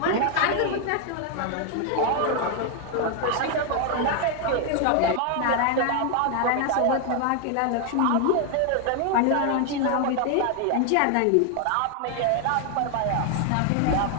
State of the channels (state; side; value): different; both; correlation 0.00